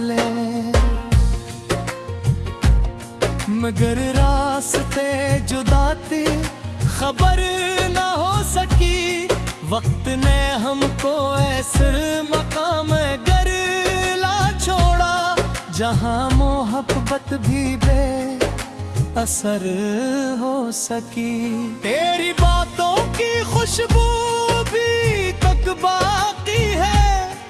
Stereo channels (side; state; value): both; identical; correlation 1.00